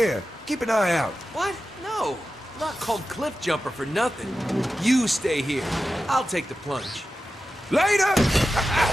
Keep an eye out. What? No. I'm not called Cliff Jumper for nothing. You stay here. I'll take the plunge. Later!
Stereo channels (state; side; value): normal; both; correlation 0.92